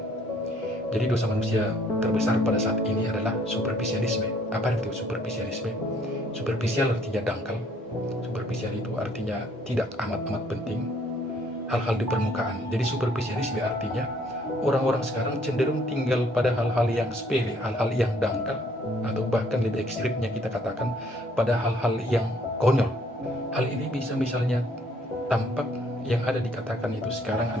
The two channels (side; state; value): both; normal; correlation 0.63